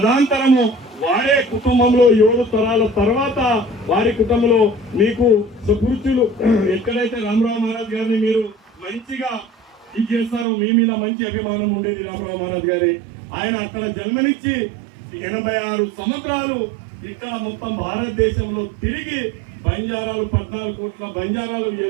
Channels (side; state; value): left; drops out; at 10.5 s